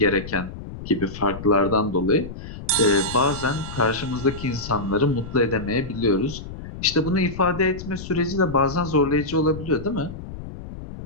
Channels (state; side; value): noise; left; rumble, 11 dB below the sound